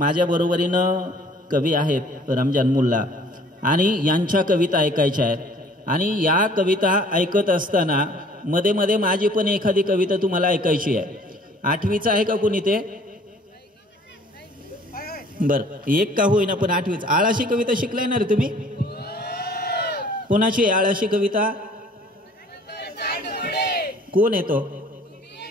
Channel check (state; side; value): normal; both; correlation 0.54